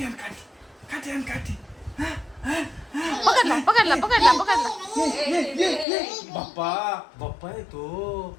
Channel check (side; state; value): right; drops out; at 5.9 s